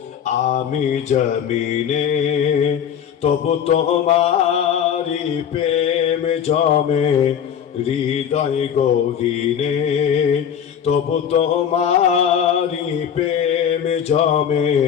জমিনে তবু তোমারি প্রেম জমে হৃদয় গহীনে, তবু তোমারি প্রেম জমে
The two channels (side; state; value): right; quieter; 8.6 dB